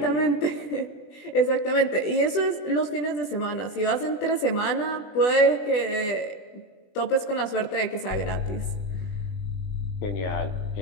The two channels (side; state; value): right; late; 20 ms